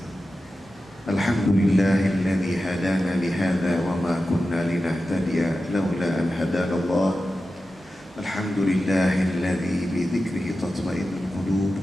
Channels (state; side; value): normal; both; correlation 0.93